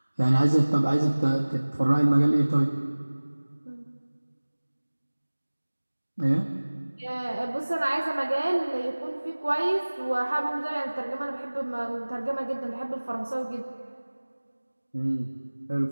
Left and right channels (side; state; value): both; inverted; correlation -1.00